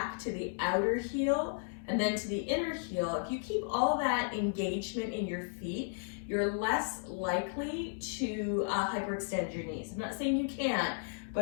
to the outer heel, and then to the inner heel. If you keep all that engagement in your feet, you're less likely to hyperextend your knees. I'm not saying you can't,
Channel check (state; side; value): silent; right; digital silence